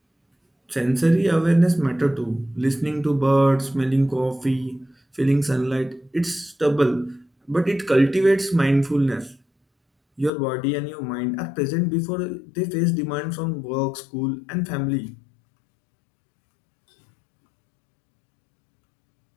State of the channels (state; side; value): drops out; right; at 10.3 s